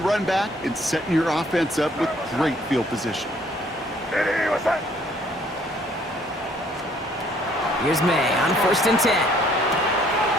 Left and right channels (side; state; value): both; normal; correlation 0.62